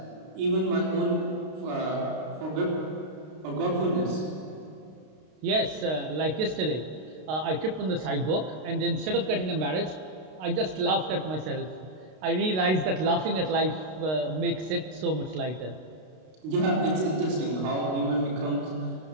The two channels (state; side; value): late; left; 32 ms